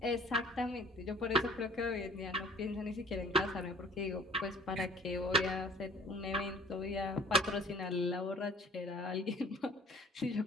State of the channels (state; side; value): normal; both; correlation 0.52